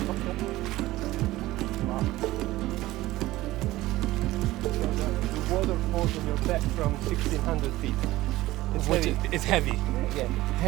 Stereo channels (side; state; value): left; quieter; 17.4 dB